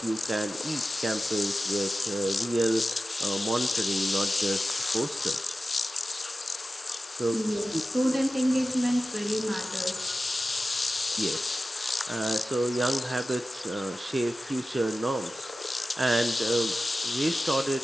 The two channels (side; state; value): both; normal; correlation 0.95